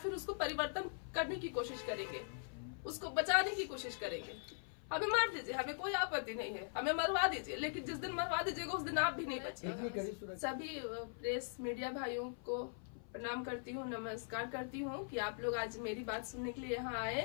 उसको परिवर्तन करने की कोशिश करेंगे, उसको बचाने की कोशिश करेंगे? हमें मार दीजिए, हमें कोई आपत्ति नहीं है, हमें मरवा दीजिए, लेकिन जिस दिन मरवा दीजिएगा उस दिन आप भी नहीं बचेंगे। सभी प्रेस मीडिया भाइयों को प्रणाम करती हूँ, नमस्कार करती हूँ कि आप लोग आज मेरी बात सुनने के लिए यहाँ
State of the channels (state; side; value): silent; right; 50 dB below the other